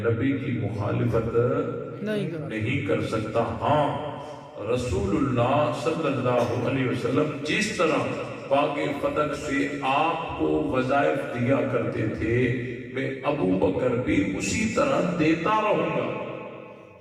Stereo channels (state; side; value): identical; both; correlation 1.00